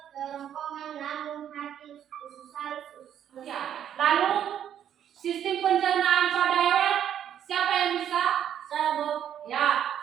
kerongkongan, lambung, hati, usus halus, usus besar. Ya. Lalu sistem pencernaan pada hewan? Siapa yang bisa? Saya, Bu. Ya.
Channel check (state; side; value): quieter; left; 9.8 dB